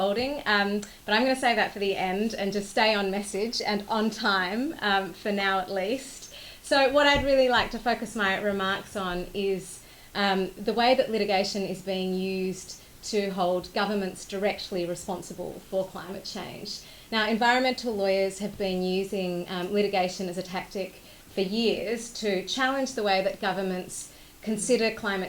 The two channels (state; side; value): identical; both; correlation 1.00